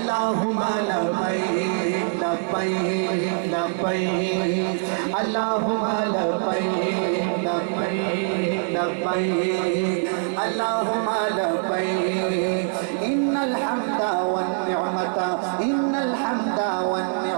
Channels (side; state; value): left; silent; 63 dB below the other